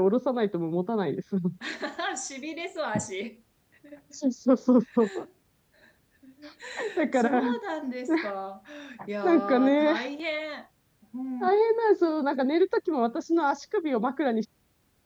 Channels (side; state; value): both; identical; correlation 1.00